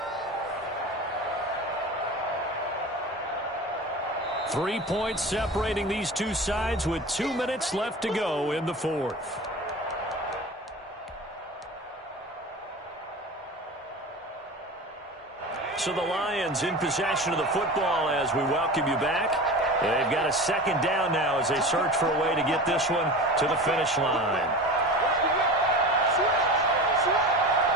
3 points separating these two sides with 2 minutes left to go in the fourth. So the Lions in possession of the football as we welcome you back. They've got a 2nd down now as they search for a way to get this one to the finish line.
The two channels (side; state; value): both; normal; correlation 0.33